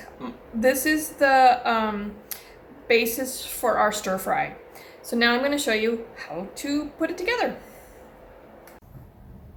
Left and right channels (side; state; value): both; identical; correlation 1.00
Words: the basis for our stir fry. So now I'm going to show you how to put it together.